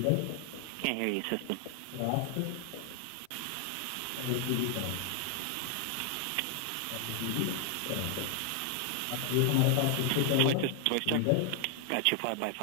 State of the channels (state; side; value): different; both; correlation 0.00